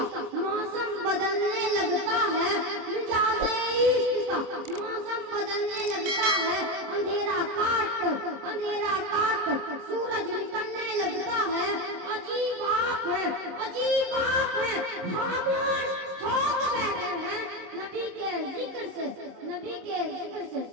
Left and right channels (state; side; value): late; left; 26 ms